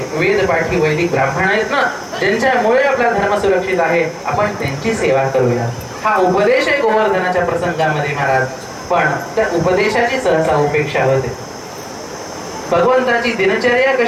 वेदपाठी वैदिक ब्राह्मण आहेत ना, ज्यांच्यामुळे आपला धर्म सुरक्षित आहे, आपण त्यांची सेवा करूया. हा उपदेश आहे गोवर्धनाच्या प्रसंगामध्ये महाराज. पण त्या उपदेशाची सहसा उपेक्षा होते. भगवंताची दिनचर्या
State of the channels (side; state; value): both; identical; correlation 1.00